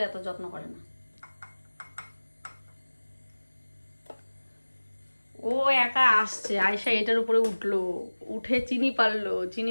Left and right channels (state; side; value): inverted; both; correlation -1.00